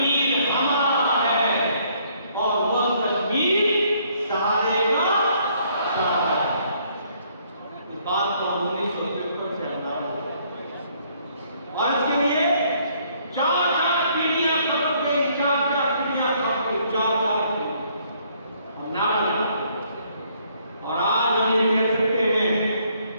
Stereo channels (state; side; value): inverted; both; correlation -0.66